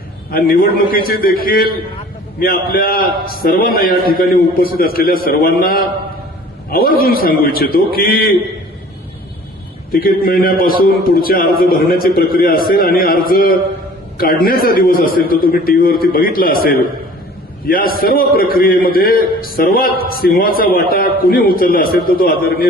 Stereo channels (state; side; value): normal; both; correlation 0.48